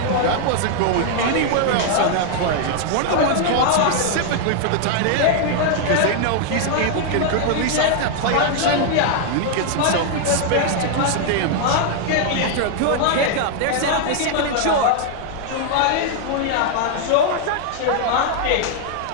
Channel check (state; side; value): different; both; correlation 0.00